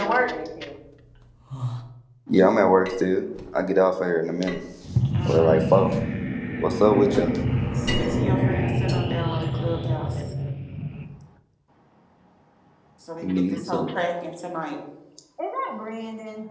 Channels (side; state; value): both; identical; correlation 1.00